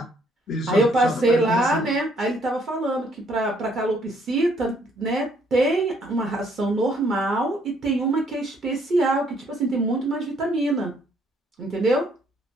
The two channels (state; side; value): normal; both; correlation 0.67